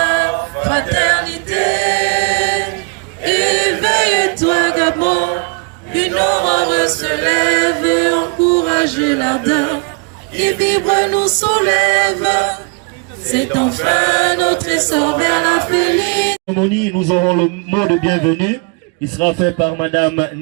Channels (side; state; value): left; quieter; 32.3 dB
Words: fraternité, éveille-toi Gabon, une aurore se lève et encourage l'ardeur qui vibre nous soulève. C'est enfin notre essor vers la félicité. Nous aurons le mot de bienvenue. Il sera fait par Madame